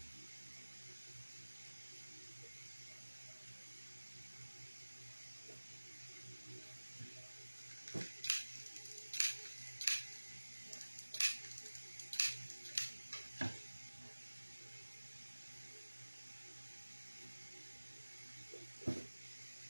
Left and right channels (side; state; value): both; inverted; correlation -1.00